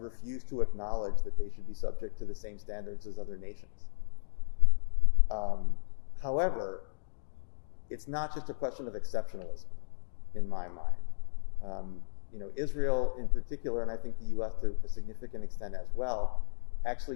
to acknowledge that they should be subject to the same standards as other nations. However, it's not just a question of exceptionalism in my mind. Israel in particular, and I think the US to a significant extent as well,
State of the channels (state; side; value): silent; right; digital silence